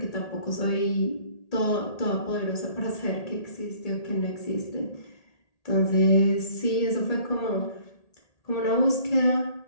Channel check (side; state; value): right; late; 1.8 ms